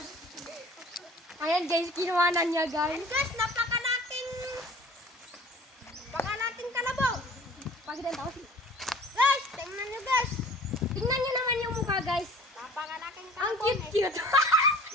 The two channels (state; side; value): normal; both; correlation 0.46